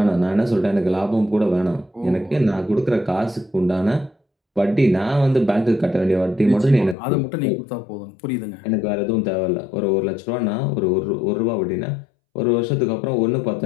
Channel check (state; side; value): drops out; right; at 7.0 s